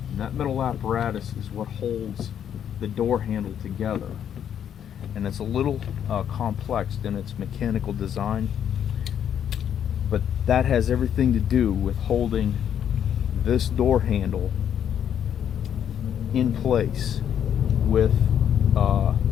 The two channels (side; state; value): right; quieter; 9.2 dB